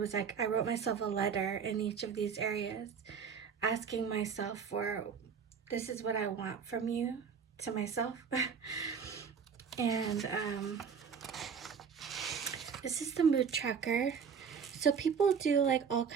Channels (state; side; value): quieter; left; 6.5 dB